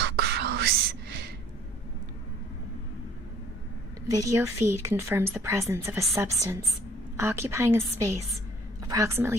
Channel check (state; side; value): normal; both; correlation 0.57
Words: gross. Video feed confirms the presence of a substance occupying a space approximately